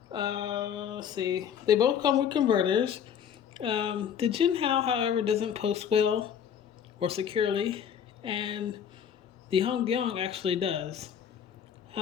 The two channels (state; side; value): quieter; right; 8.5 dB